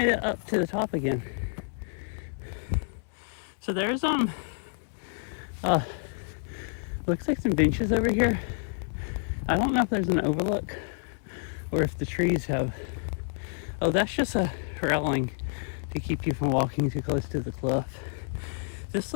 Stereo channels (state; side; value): silent; right; 59 dB below the other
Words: it up to the top again. So there's looks like some benches over here. I don't know if there's an overlook or if the trees have. Oh, that's just a railing to keep you from walking too close to the cliff. This